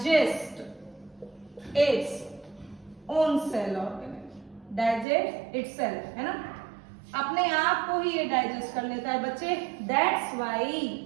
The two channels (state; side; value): drops out; left; at 5.1 s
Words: its own cell organelle, digest itself, है ना, अपने आप को ही ये डाइजेस्ट कर लेता है बच्चे। That's why